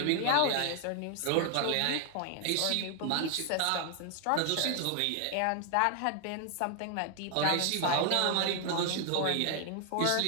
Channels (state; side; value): different; both; correlation 0.00